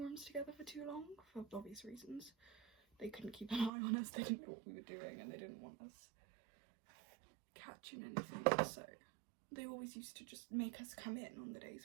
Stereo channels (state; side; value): drops out; left; at 3.7 s